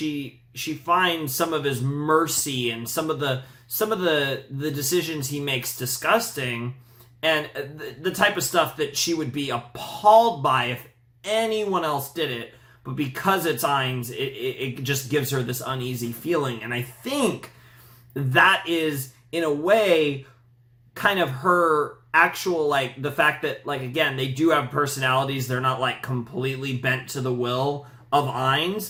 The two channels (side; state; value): both; identical; correlation 1.00